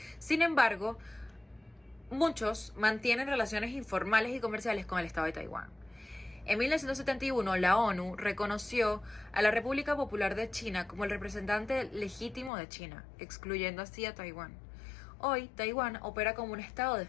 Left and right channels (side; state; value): right; drops out; at 12.5 s